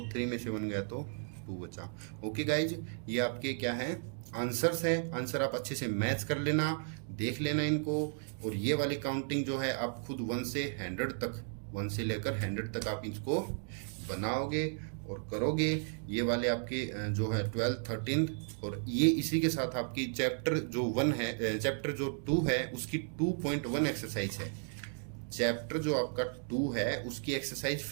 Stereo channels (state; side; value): silent; left; 55 dB below the other